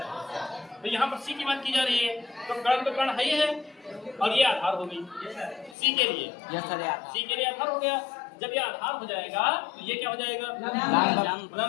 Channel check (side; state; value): right; drops out; at 5.8 s